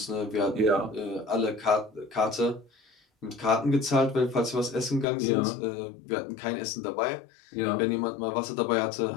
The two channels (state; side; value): drops out; right; at 5.1 s